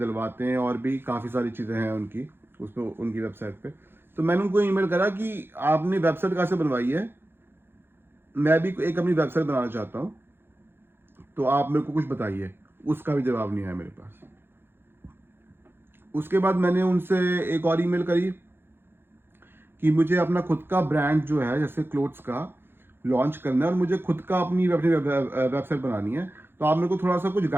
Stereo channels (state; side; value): late; left; 0.10 ms